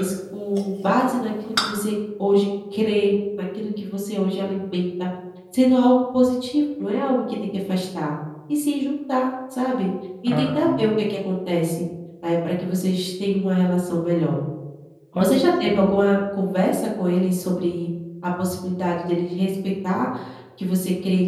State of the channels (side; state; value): both; identical; correlation 1.00